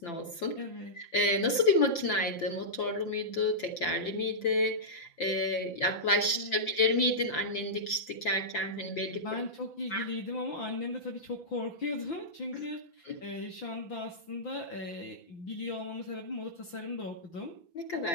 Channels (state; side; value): late; right; 5.9 ms